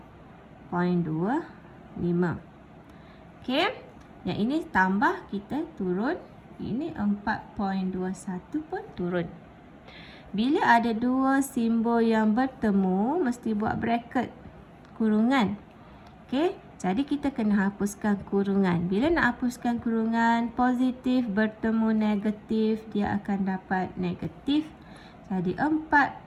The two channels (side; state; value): both; identical; correlation 1.00